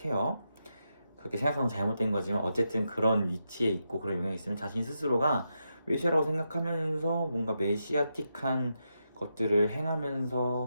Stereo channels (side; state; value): both; inverted; correlation -0.85